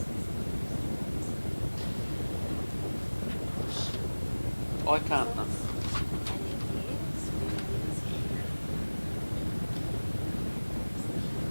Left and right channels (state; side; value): inverted; both; correlation -1.00